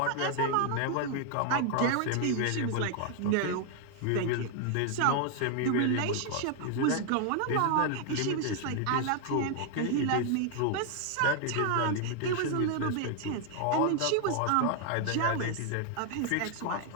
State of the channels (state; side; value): different; both; correlation 0.00